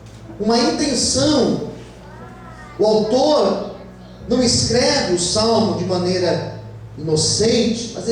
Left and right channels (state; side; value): identical; both; correlation 1.00